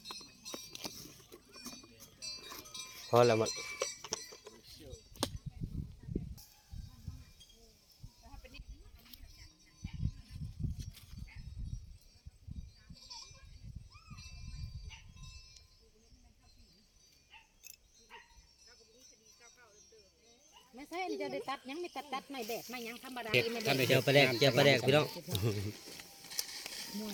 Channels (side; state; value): both; identical; correlation 1.00